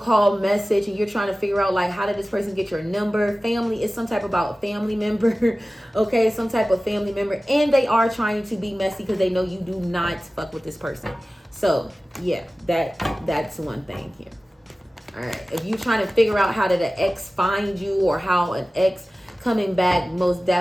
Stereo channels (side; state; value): both; normal; correlation 0.96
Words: message, and you're trying to figure out like, how did this person get your number? Family is some type about family member. Okay, some type of family member, and they are trying to be messy because they know you do not fuck with this person. So yeah, that's one thing here. All right, if you're trying to figure out how did an ex find you, or how an ex coming back, most